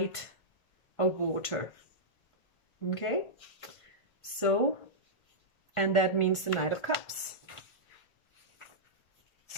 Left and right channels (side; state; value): right; late; 1.5 ms